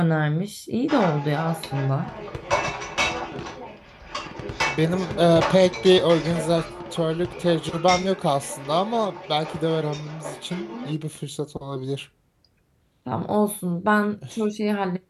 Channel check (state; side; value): identical; both; correlation 1.00